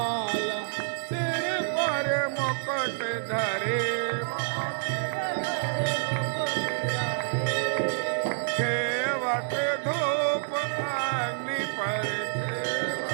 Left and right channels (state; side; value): silent; left; 59 dB below the other